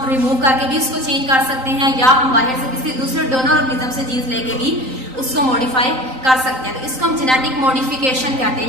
रिमूव करके भी उसको चेंज कर सकते हैं या हम बाहर से किसी दूसरे डोनर ऑर्गेनिज्म से जीन्स लेके भी उसको मॉडिफाई कर सकते हैं। तो इसको हम जेनेटिक मॉडिफिकेशन कहते हैं,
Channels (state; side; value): late; left; 3.9 ms